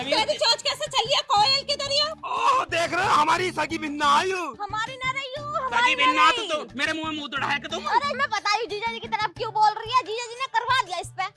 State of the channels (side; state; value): both; identical; correlation 1.00